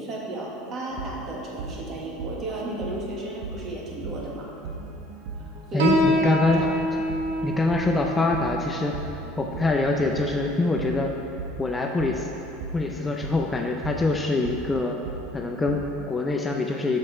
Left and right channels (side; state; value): both; normal; correlation 0.60